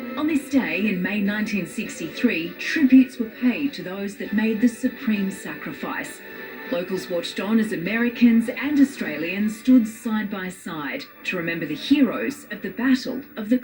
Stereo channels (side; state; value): both; identical; correlation 1.00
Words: On this day in May 1963, tributes were paid to those that made the supreme sacrifice. Locals watched on as Americans and Australians stood side by side to remember the heroes of the Battle of the